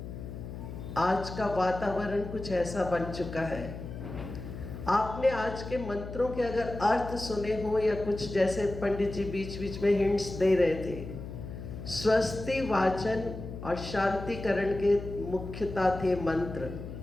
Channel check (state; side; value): noise; left; hum, 9 dB below the sound